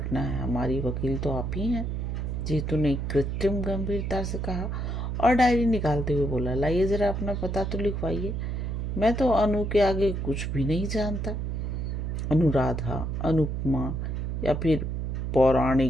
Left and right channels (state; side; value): noise; right; hum, 2 dB below the sound